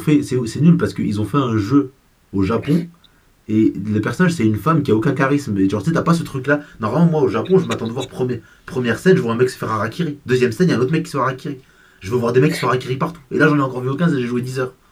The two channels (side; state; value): both; identical; correlation 1.00